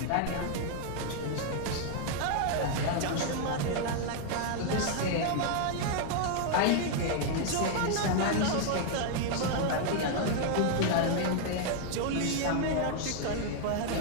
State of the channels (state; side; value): different; both; correlation 0.00